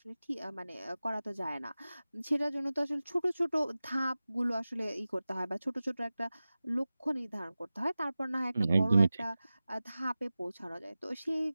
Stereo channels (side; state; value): both; inverted; correlation -0.96